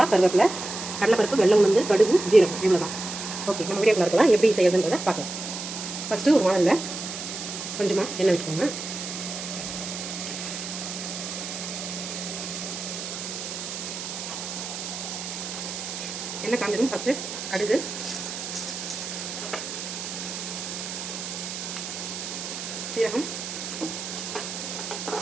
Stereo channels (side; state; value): right; noise; hiss, 7 dB below the sound